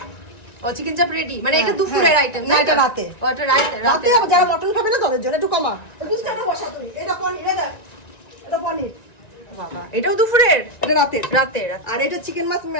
ও চিকেন চাপ রেডি, মানে এটা দুপুরের আইটেম না, এটা রাতে। ও এটা রাতে রাতে যারা মটন খাবে না তাদের জন্য একটু কমা। দুধটা বসা তুমি। এটা পনির, এটা পনির। বাবা এটাও দুপুরের? এটা রাতে। রাতে আর এটা চিকেন মাছ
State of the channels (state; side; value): late; right; 1.9 ms